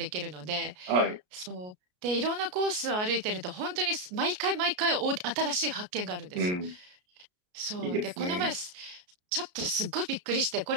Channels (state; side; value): late; left; 33 ms